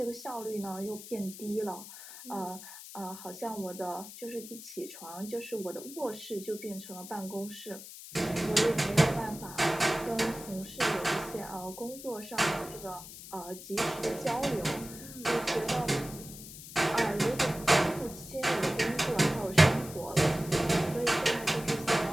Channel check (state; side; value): noise; left; hiss, 14 dB below the sound